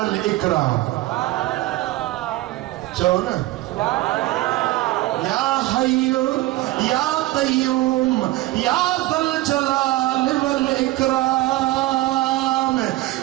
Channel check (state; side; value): quieter; left; 17.9 dB